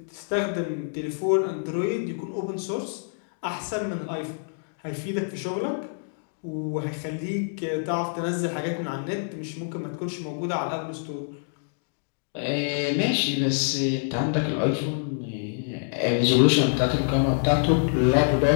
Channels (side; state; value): right; silent; digital silence